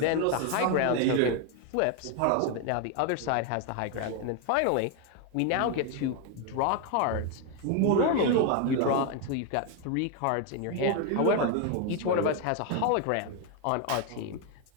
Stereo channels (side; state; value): both; different; correlation 0.01